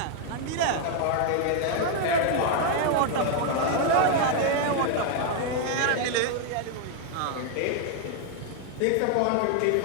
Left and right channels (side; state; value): both; different; correlation 0.00